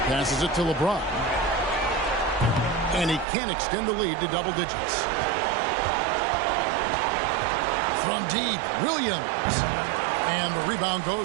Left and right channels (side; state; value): left; drops out; at 3.2 s